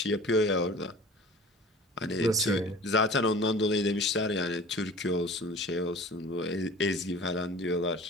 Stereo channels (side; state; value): both; normal; correlation 0.42